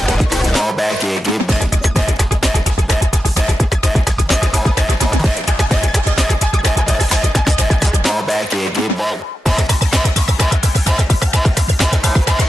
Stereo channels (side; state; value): both; normal; correlation 0.91